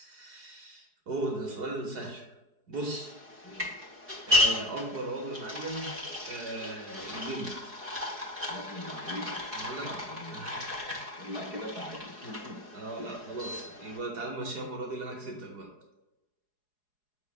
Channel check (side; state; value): left; late; 4.8 ms